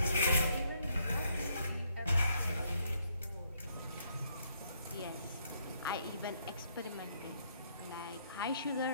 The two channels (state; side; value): inverted; both; correlation -0.72